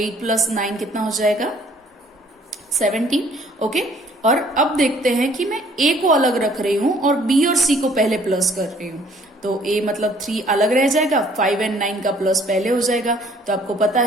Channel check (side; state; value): both; normal; correlation 0.58